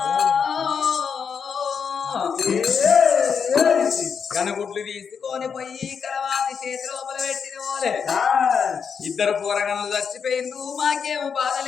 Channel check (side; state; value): right; quieter; 6.5 dB